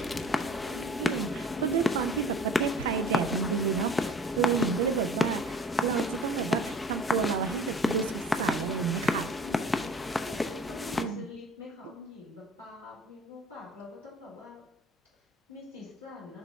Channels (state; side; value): normal; both; correlation 0.46